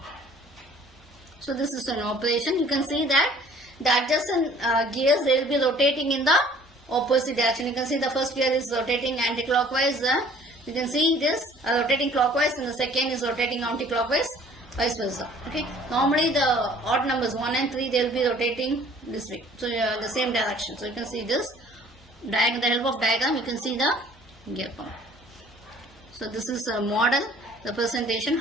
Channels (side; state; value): both; normal; correlation 0.53